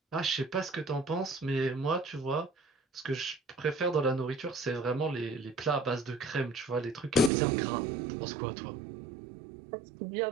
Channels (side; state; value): left; drops out; at 7.3 s